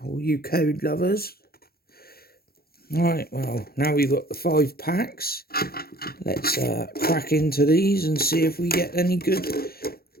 all you code lovers. Right, well now we've got the 5 packs. Let's crack into these and see if we get any good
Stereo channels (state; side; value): late; right; 0.44 ms